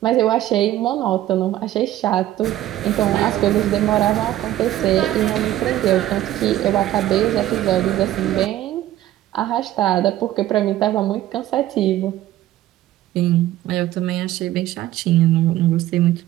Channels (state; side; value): quieter; left; 13.9 dB